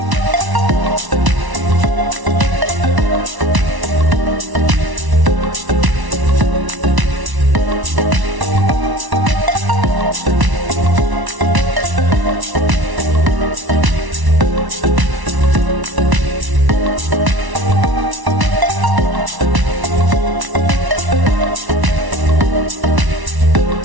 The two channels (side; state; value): left; late; 1.1 ms